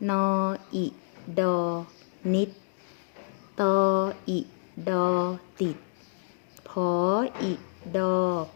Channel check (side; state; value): right; silent; digital silence